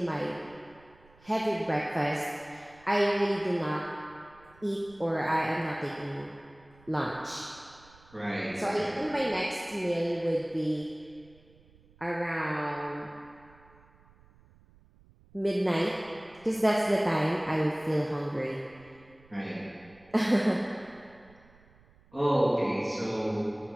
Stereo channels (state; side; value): noise; right; rumble, 27 dB below the sound